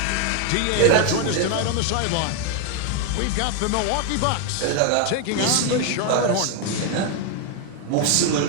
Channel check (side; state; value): both; different; correlation 0.01